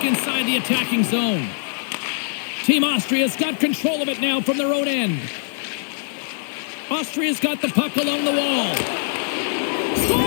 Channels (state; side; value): silent; right; 57 dB below the other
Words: inside the attacking zone. Team Austria's got control of it now from their own end. Austria's got the puck along the wall.